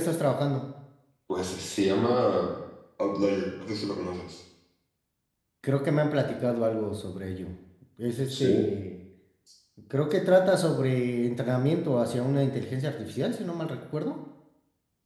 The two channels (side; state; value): both; identical; correlation 1.00